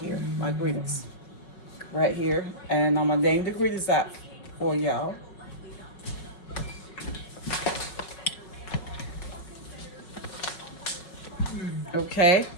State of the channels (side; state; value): right; late; 5.4 ms